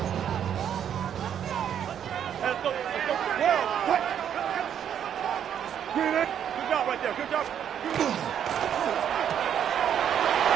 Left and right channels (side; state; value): left; quieter; 9.1 dB